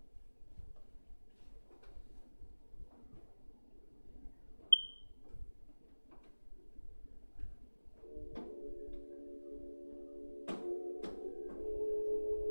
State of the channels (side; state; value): both; inverted; correlation -1.00